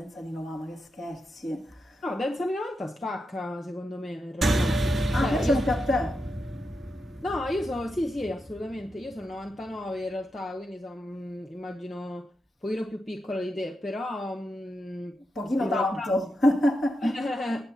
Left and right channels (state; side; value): normal; both; correlation 0.87